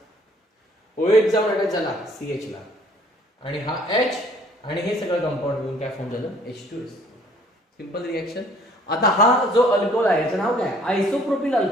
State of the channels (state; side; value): normal; both; correlation 0.58